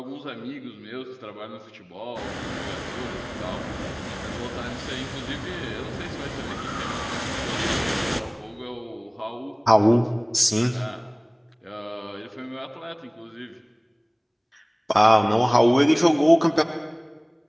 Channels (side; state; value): both; identical; correlation 1.00